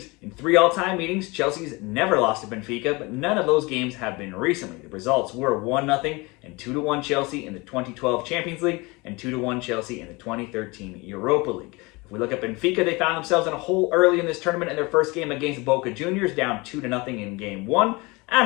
In 3 all-time meetings, Chelsea's never lost to Benfica, but none of those games have been recently. The results were 1-0 and 2-1 Chelsea in the 2012 Champions League and 2-1 Chelsea in the 2013 Europa League. If we look at Benfica, they found themselves in a hole early in this tournament in their first game against Boca Juniors, down 2-0 in Game 1.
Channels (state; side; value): quieter; right; 25.2 dB